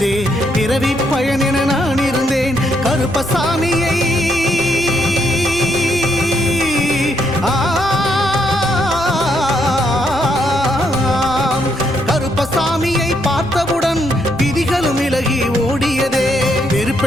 பிறவி பயன் என நான் இருந்தேன். கருப்பசாமியை கருப்பசாமியை பார்த்தவுடன் விதிகளும் விலகி ஓடியதே.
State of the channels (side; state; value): both; normal; correlation 0.74